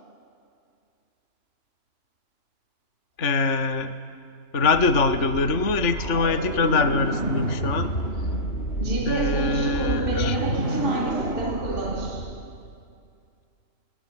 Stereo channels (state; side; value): late; right; 3.4 ms